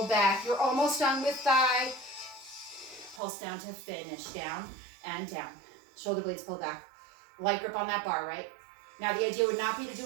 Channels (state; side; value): drops out; left; at 3.2 s